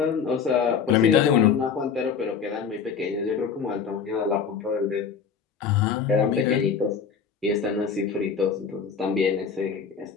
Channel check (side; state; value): right; quieter; 6.4 dB